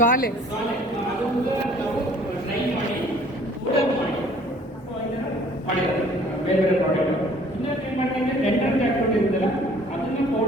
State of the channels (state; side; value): normal; both; correlation 0.55